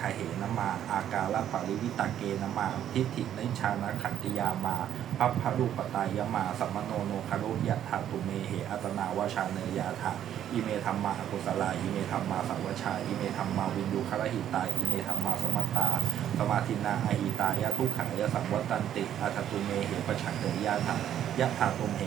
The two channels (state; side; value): quieter; left; 10.6 dB